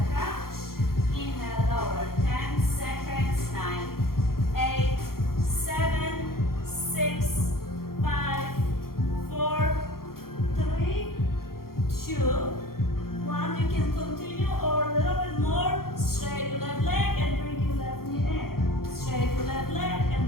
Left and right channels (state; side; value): late; right; 0.93 ms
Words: crunch. Inhale, lower. 10 seconds, 9, 8, 7, 6, 5, 4, 3, 2, 1. You can continue or a little bit more. Straight your left leg and bring your left knee in. Straight your left leg